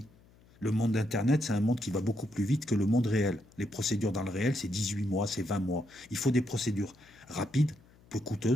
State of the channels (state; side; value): noise; left; hum, 28 dB below the sound